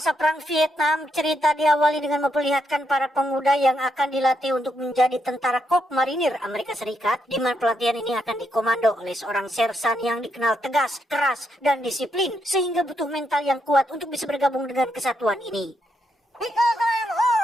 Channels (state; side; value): normal; both; correlation 0.79